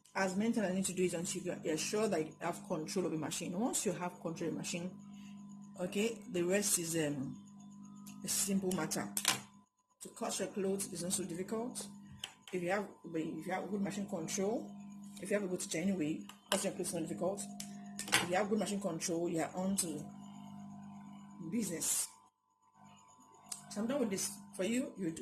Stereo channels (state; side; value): identical; both; correlation 1.00